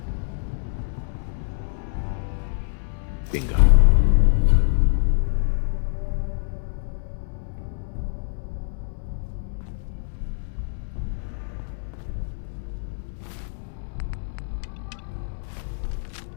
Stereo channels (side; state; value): right; silent; 60 dB below the other